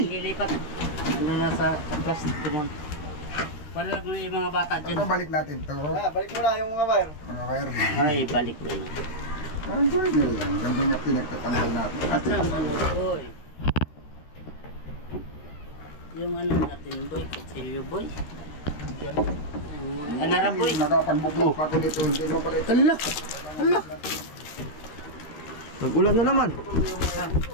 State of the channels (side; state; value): right; late; 13 ms